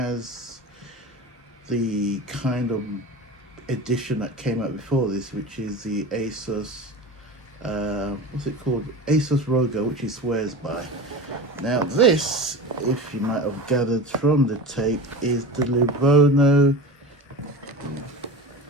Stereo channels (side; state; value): both; normal; correlation 0.31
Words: the kind of edition that came out before this, which is the Asus, what's it called? Asus Rogo, which he swears by. Now this, if you might have gathered from the tape, is the Lenovo,